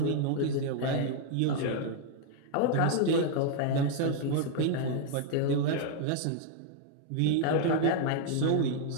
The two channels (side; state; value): both; different; correlation 0.00